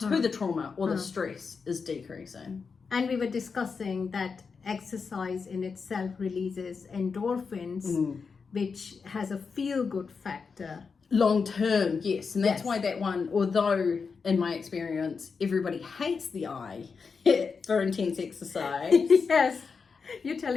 the trauma or the stress is decreasing. And we were discussing that exercise in itself releases endorphins, which has a feel-good factor. Long term, yes. And that's why that one, although in my experience, everybody hates the I for intense exercise. Yes, you're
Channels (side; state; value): right; quieter; 5.3 dB